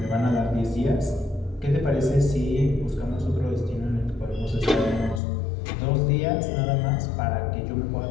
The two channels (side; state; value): right; drops out; at 5.2 s